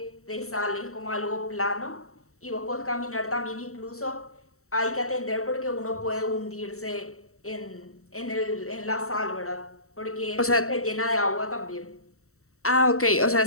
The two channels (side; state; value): right; late; 0.64 ms